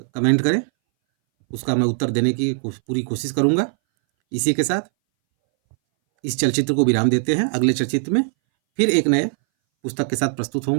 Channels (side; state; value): left; silent; 62 dB below the other